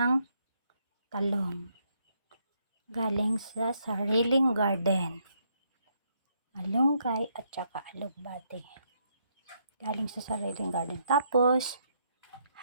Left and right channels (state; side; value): inverted; both; correlation -0.74